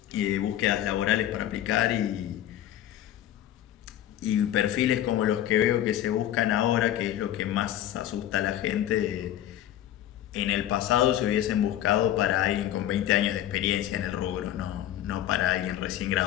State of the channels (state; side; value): quieter; right; 12.2 dB